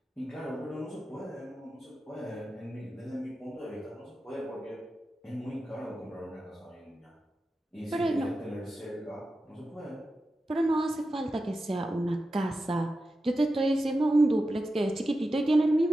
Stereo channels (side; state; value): both; normal; correlation 0.92